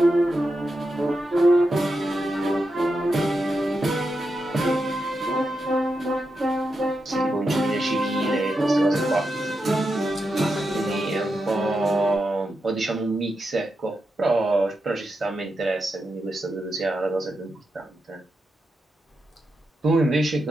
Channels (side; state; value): both; normal; correlation 0.87